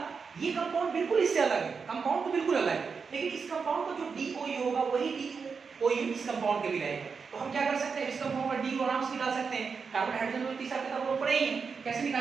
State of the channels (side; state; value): left; quieter; 5.5 dB